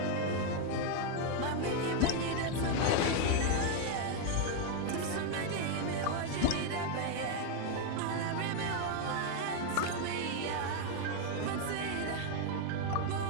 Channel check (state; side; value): different; both; correlation 0.01